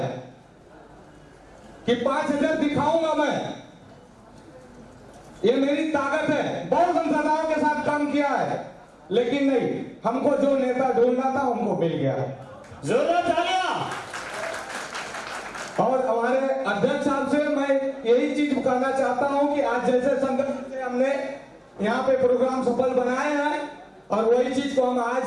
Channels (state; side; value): identical; both; correlation 1.00